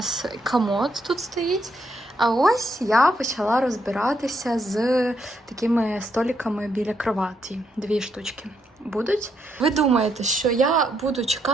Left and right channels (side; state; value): both; normal; correlation 0.77